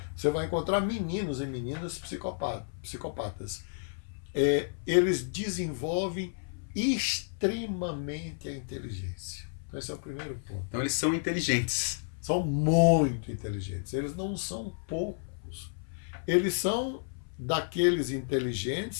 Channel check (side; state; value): right; silent; 56 dB below the other